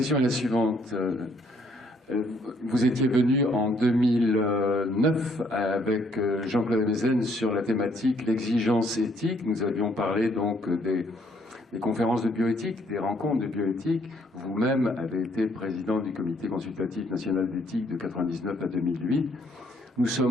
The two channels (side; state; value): both; normal; correlation 0.67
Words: est la suivante. Vous étiez venu en 2009 avec Jean-Claude Mézen sur la thématique l'exigence éthique. Nous avions parlé donc des conférences de bioéthique, des rencontres de bioéthique. Vous-même avez été président du comité consultatif national d'éthique de 1999 à 2008. Nous